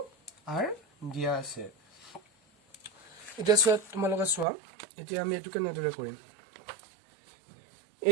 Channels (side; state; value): left; drops out; at 4.5 s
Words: r দিয়া আছে এটা সব তোমালোকে সোৱা এতিয়া আমি এটো কেনেদৰে কৰিম